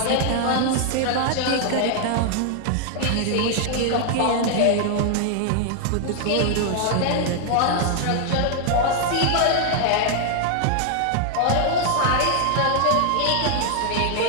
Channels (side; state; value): both; different; correlation 0.00